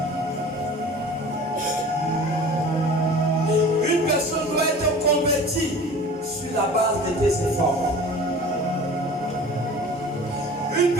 Une personne doit être convertie sur la base de tes efforts. Une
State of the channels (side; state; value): both; normal; correlation 0.41